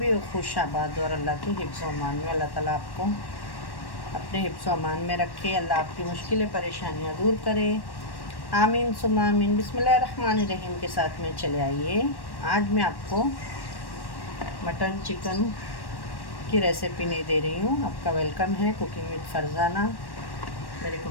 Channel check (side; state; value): right; late; 1.1 ms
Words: हो खुश आबाद और अल्लाह के हिफ्ज़ अमान में। अल्लाह ताला आपको अपने हिफ्ज़ अमान में रखे, अल्लाह आपकी मुश्किलें परेशानियाँ दूर करे, आमीन सुम्मा आमीन। बिस्मिल्लाहिर्रहमानिर्रहीम के साथ में चले आइए। आज मैं आपको मटन चिकन की रेसिपी नहीं दे रही हूँ। आपका वेलकम है कुकिंग विद फरजाना मेरे